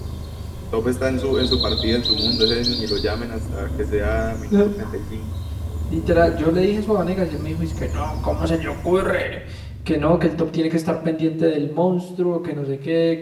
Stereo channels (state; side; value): identical; both; correlation 1.00